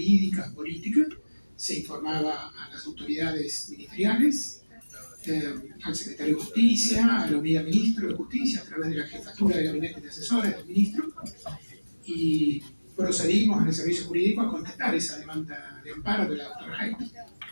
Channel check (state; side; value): inverted; both; correlation -1.00